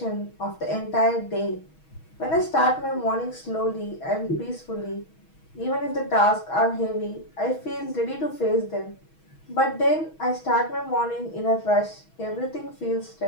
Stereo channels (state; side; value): late; right; 6.3 ms